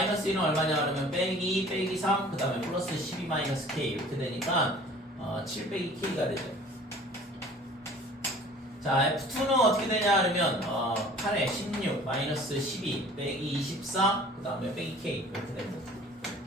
1은 얼마냐 그러면 빼기 3 그 다음에 플러스 12 마이너스 k 이렇게 되니까 7 빼기 k가 되죠. 자, F2는 어떻게 되냐 그러면 8에 16 마이너스 12 빼기 24 그 다음에 빼기 K 이렇게 됩니다.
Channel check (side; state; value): both; normal; correlation 0.48